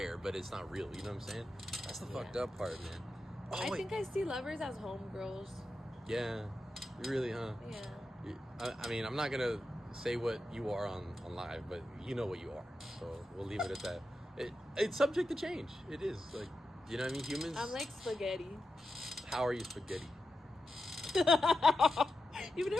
but it's not real. You know what I'm saying? That's the fucked up part, man. I think I see lovers as homegirls. Yeah, you really, huh? Yeah. I mean, I'm not gonna say what you are on live, but you know what you are, so we'll leave it at that. It's subject to change. It is like, you know what I mean? Humans. I'm like spaghetti. How are you spaghetti? You've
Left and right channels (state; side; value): normal; both; correlation 0.89